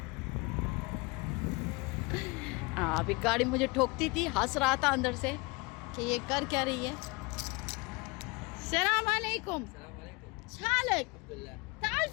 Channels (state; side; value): quieter; right; 26.8 dB